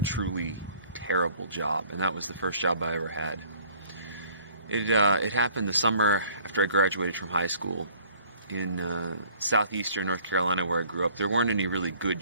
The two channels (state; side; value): inverted; both; correlation -0.55